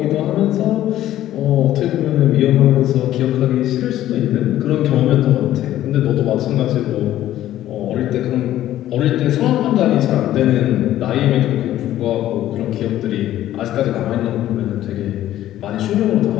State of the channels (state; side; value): quieter; right; 13.2 dB